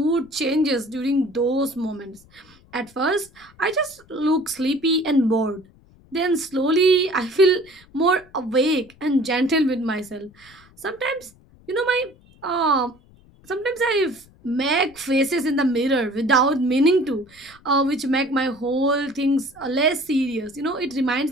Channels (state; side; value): noise; left; rumble, 27 dB below the sound